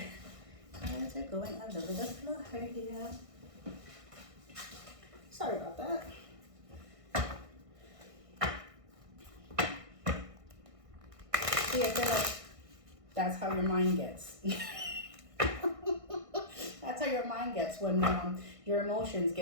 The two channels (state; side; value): late; left; 1.6 ms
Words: Cards are going all over the floor here. Sorry about that. See, I feel like that's how your mind gets. That's how your mind gets when your emotions